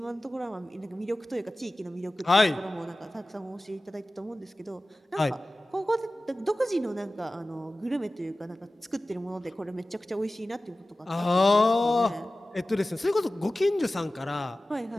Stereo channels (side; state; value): both; normal; correlation 0.96